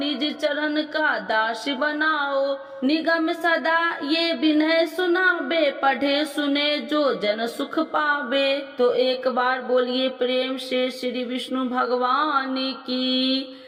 चरण का दास बनाओ निगम सदा ये विनय सुनाबे पढ़े सुने जो जन सुख पावे। तो एक बार बोलिए प्रेम से श्री विष्णु भगवान की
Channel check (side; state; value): both; identical; correlation 1.00